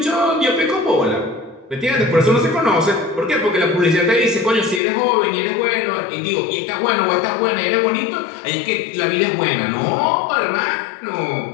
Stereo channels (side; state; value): right; drops out; at 4.8 s